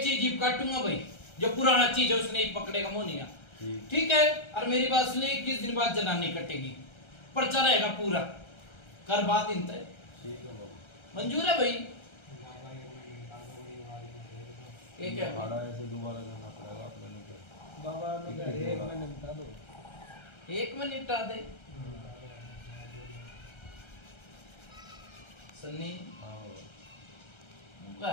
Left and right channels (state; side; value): late; right; 1.3 ms